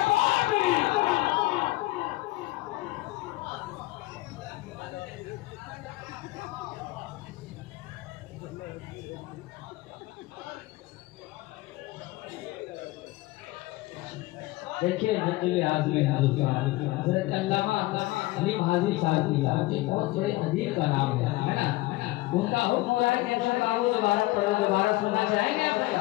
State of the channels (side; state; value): right; quieter; 19.4 dB